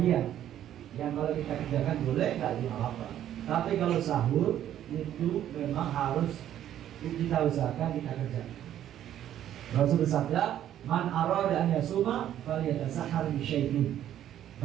yang kalau kita kerjakan boleh, gak apa-apa. Tapi kalau sahur itu memang harus kita usahakan kita kerjakan. Rasul bersabda, man arada an yasuma falyatasahhar bi syai'in.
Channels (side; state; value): left; quieter; 11.3 dB